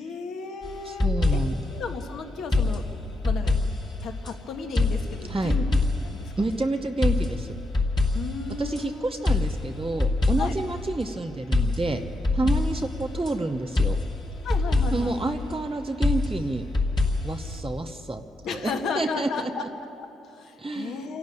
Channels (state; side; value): normal; both; correlation 0.83